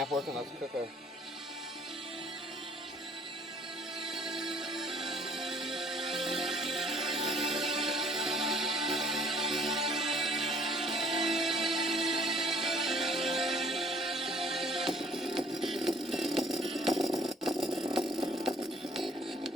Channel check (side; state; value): both; normal; correlation 0.58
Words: working, let's cook her.